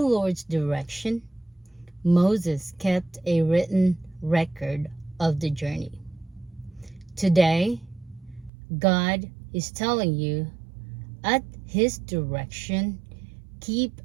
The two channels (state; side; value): drops out; left; at 8.5 s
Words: Lord's direction, Moses kept a written record of the journey. Today, God is telling you, at His direction, keep